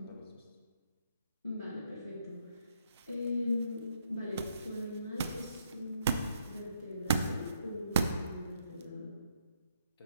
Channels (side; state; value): both; inverted; correlation -0.74